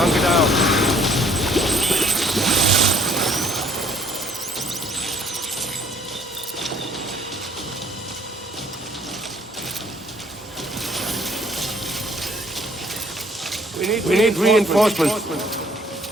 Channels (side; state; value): both; normal; correlation 0.62